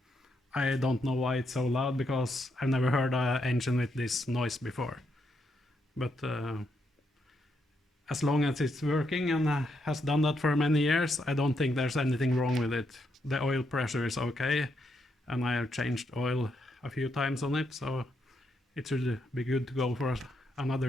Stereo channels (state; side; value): normal; both; correlation 0.79